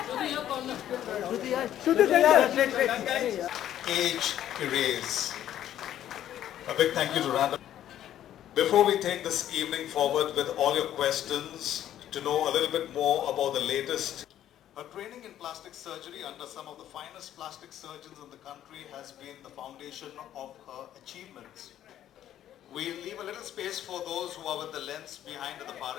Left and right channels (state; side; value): quieter; right; 11.6 dB